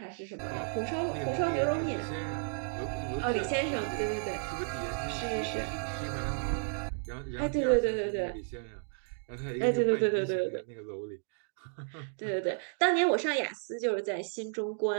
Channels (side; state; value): left; silent; 56 dB below the other